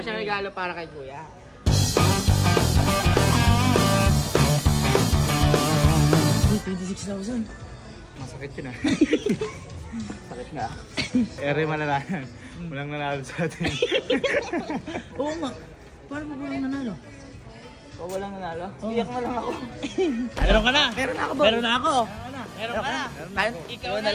siyang regalo para kay Kuya. Uy, 26,000. Masakit yun ah. Sakit nga. Ere malalaman. Walang nanalo sa atin. Oo nga. Paano mo walang nanalo? O walang nanalo? Iyak na lang ako. Meron ka na. Meron na ako, boy. Meron na ako. Meron ka na. Kahit Ikaw na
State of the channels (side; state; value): both; identical; correlation 1.00